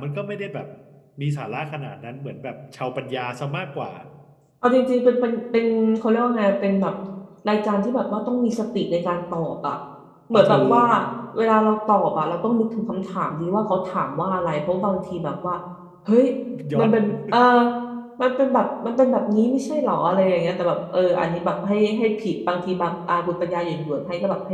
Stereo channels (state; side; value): identical; both; correlation 1.00